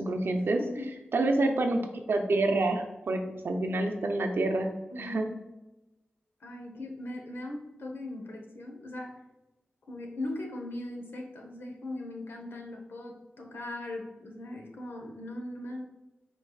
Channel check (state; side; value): normal; both; correlation 0.87